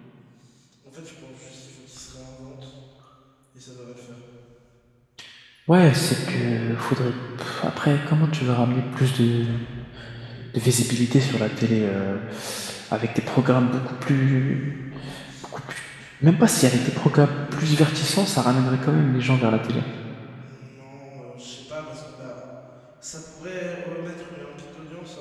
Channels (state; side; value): identical; both; correlation 1.00